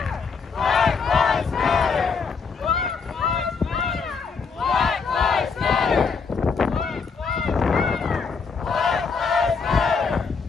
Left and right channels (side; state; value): right; quieter; 5.2 dB